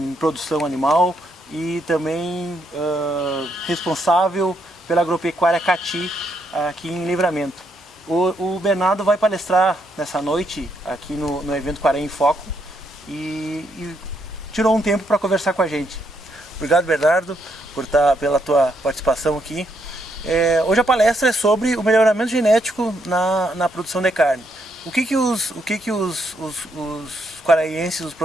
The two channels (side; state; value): both; normal; correlation 0.76